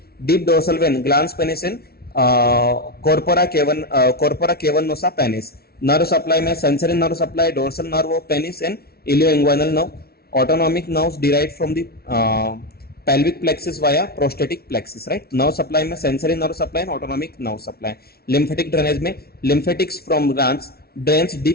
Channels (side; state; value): right; late; 0.45 ms